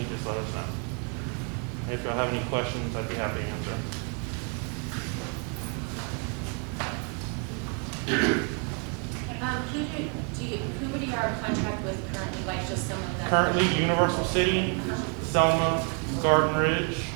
just let us know. If y'all have any questions, I'd be happy to answer. Who would you are contract with currently, like just some of them? Currently, Universal City, Selma, Garden Ridge,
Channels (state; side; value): quieter; left; 35.4 dB